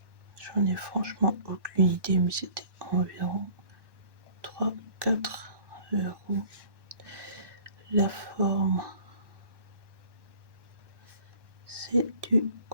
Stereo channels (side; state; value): left; late; 1.1 ms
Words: j'en ai franchement aucune idée, mais c'était environ 3-4 euros. La forme, c'est du